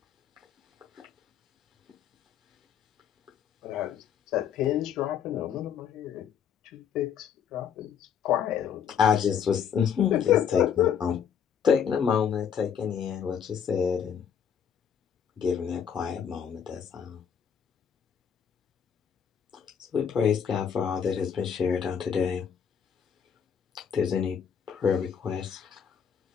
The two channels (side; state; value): right; quieter; 7.8 dB